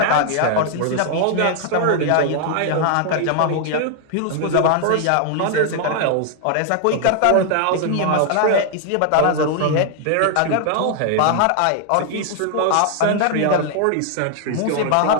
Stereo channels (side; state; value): both; different; correlation 0.00